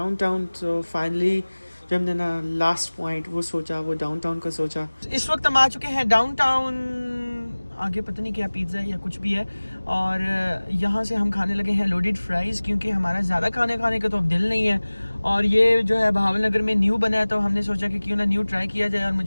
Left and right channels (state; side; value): inverted; both; correlation -1.00